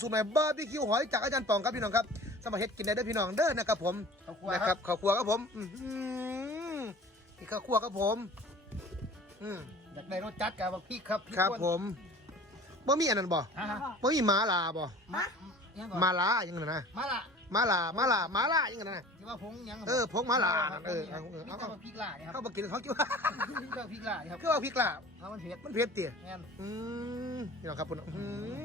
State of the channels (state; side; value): normal; both; correlation 0.43